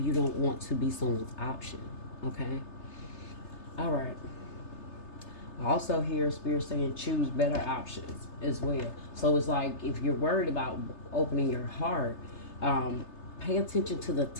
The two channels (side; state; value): right; late; 3.3 ms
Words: you don't want to be someone's option. Okay, all right. I also hear Spirit saying choose better options as well. So it's like if you're worried about opening your heart, pay attention to the